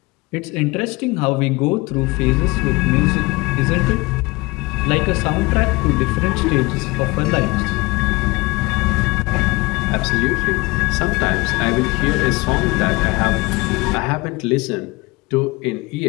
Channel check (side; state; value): right; quieter; 23.8 dB